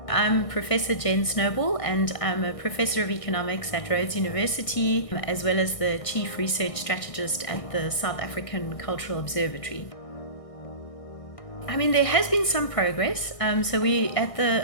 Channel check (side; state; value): right; late; 1.6 ms